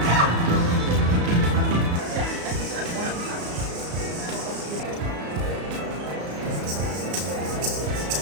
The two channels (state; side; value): late; left; 34 ms